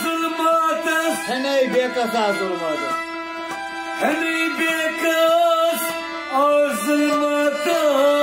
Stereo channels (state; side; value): identical; both; correlation 1.00